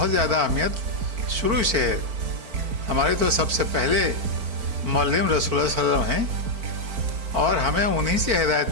زیادہ اہمیت شروع سے ہے۔ ہمارے تو سب سے پہلے معلم رسول اللہ صلی اللہ علیہ وسلم ہیں اور ہمیں انہی سے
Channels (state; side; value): late; left; 4.4 ms